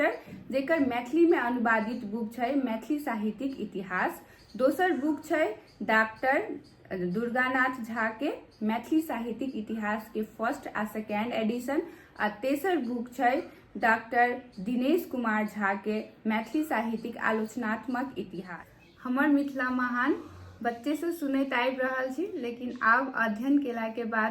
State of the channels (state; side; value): identical; both; correlation 1.00